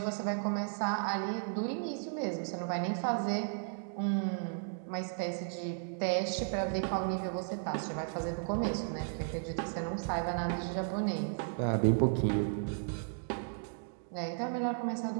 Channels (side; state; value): left; silent; digital silence